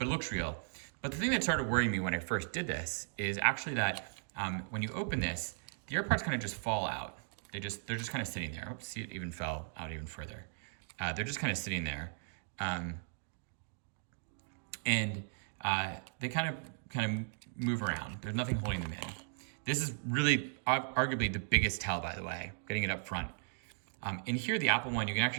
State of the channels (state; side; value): silent; left; digital silence